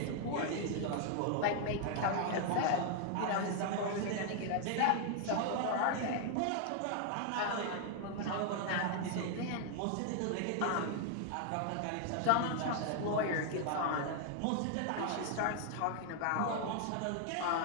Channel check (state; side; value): different; both; correlation 0.00